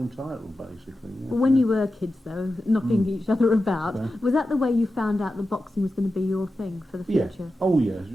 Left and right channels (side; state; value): both; normal; correlation 0.92